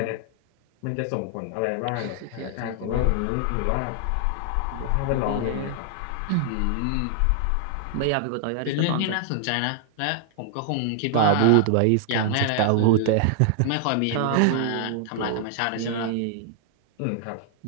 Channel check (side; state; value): both; different; correlation 0.00